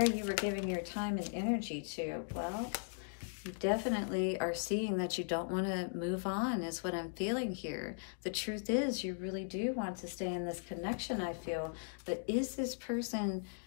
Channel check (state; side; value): silent; right; digital silence